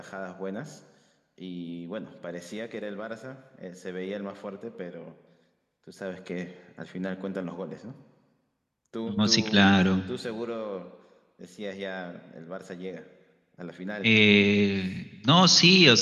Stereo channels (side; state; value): both; identical; correlation 1.00